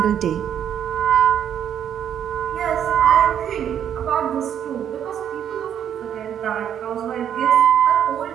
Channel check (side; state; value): left; quieter; 9.3 dB